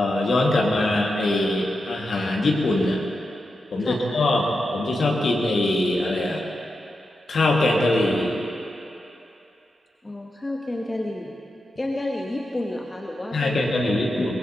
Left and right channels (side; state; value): both; normal; correlation 0.88